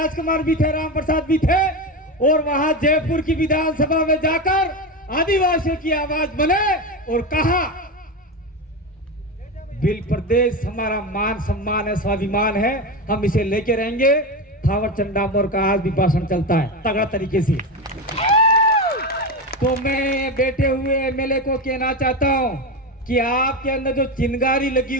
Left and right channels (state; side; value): normal; both; correlation 0.18